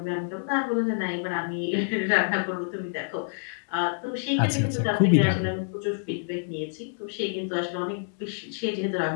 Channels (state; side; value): silent; right; digital silence